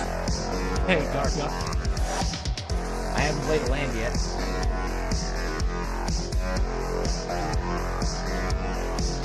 Hey, Darka. I haven't played a land yet.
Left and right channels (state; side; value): identical; both; correlation 1.00